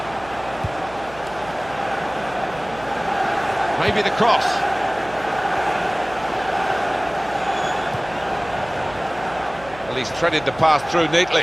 Maybe the cross. Well, he's threaded the pass through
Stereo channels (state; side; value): noise; right; hum, 19 dB below the sound